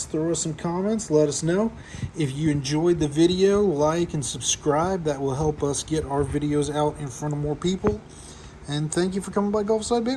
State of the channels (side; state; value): both; identical; correlation 1.00